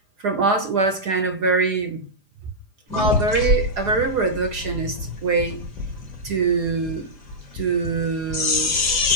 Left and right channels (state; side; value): late; left; 4.9 ms